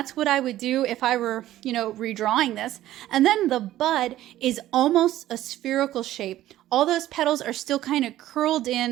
what I would do if I were, you know, redrawing this. And then the bud is almost a spherical shape. All those petals are still kind of curled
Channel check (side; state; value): left; quieter; 14.0 dB